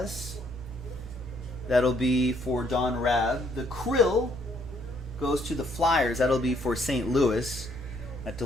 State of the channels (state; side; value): normal; both; correlation 0.68